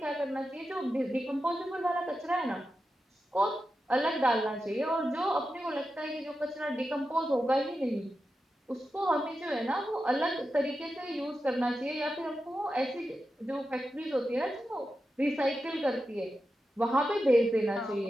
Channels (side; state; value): both; normal; correlation 0.90